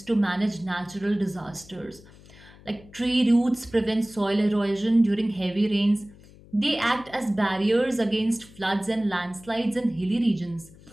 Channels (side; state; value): left; noise; hum, 23 dB below the sound